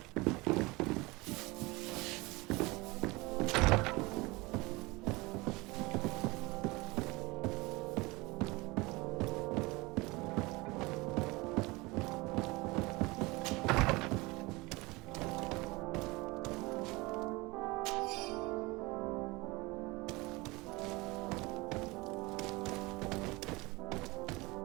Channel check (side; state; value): left; quieter; 23.4 dB